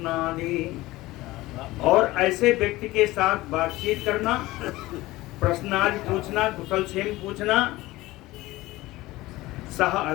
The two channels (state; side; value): quieter; right; 18.7 dB